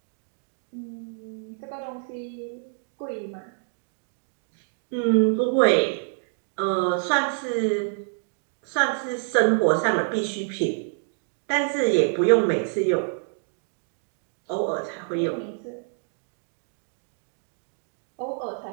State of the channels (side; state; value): left; silent; 59 dB below the other